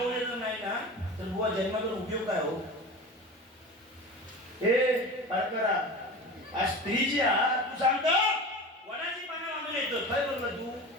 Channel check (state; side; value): normal; both; correlation 0.32